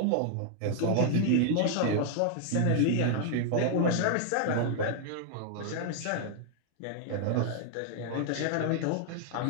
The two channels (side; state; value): both; different; correlation 0.00